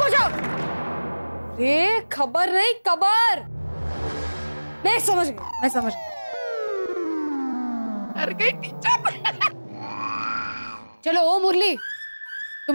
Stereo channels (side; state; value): both; inverted; correlation -1.00